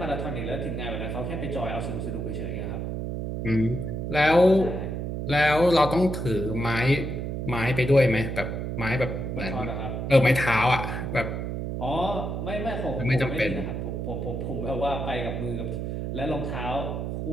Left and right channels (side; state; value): right; noise; hum, 3 dB below the sound